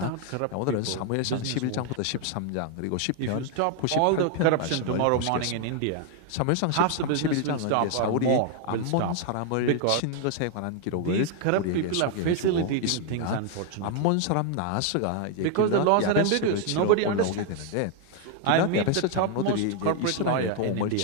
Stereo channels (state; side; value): different; both; correlation 0.00